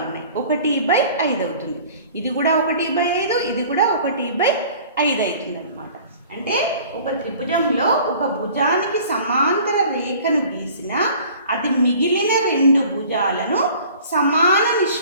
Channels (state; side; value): inverted; both; correlation -0.48